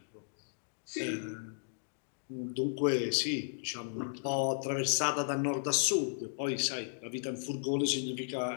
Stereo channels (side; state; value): right; silent; digital silence